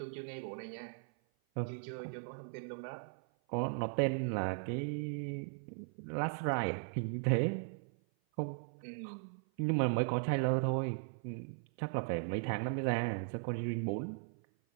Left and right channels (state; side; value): silent; left; 53 dB below the other